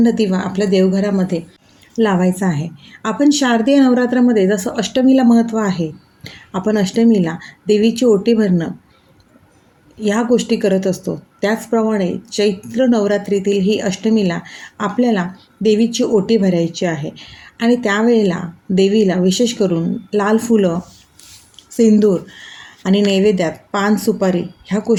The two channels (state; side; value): identical; both; correlation 1.00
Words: दिवा आपल्या देवघरामध्ये लावायचा आहे. आपण शारदीय नवरात्रामध्ये जसं अष्टमीला महत्त्व आहे, आपण अष्टमीला देवीची ओटी भरणं या गोष्टी करत असतो. त्याचप्रमाणे चैत्र नवरात्रीतील ही अष्टमीला आपल्याला देवीची ओटी भरायची आहे आणि त्यावेळेला देवीला विशेष करून लाल फुलं, सिंदूर आणि नैवेद्यात पान, सुपारी ह्या